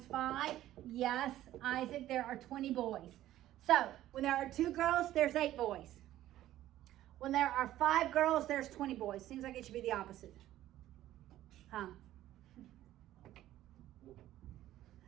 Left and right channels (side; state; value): left; quieter; 13.8 dB